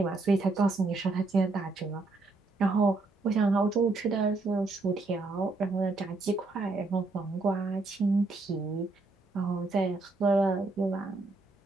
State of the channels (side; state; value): left; quieter; 3.4 dB